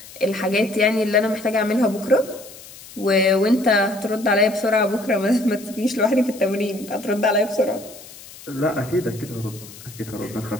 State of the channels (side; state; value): left; noise; hiss, 18 dB below the sound